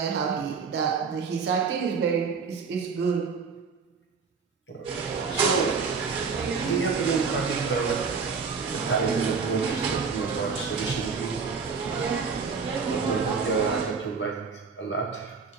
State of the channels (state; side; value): quieter; left; 5.3 dB